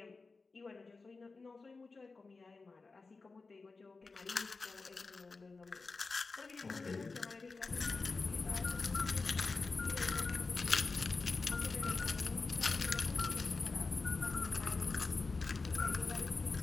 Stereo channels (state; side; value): quieter; right; 4.0 dB